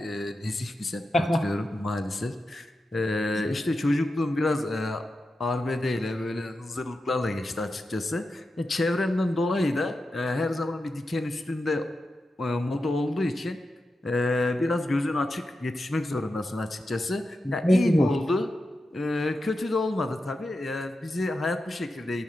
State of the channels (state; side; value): normal; both; correlation 0.90